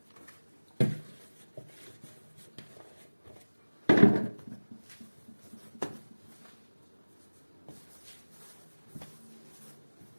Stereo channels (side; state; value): both; inverted; correlation -1.00